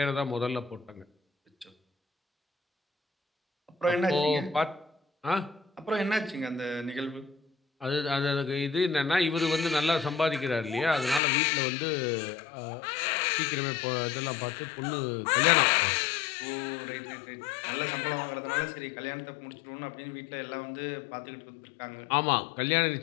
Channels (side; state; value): right; drops out; at 11.2 s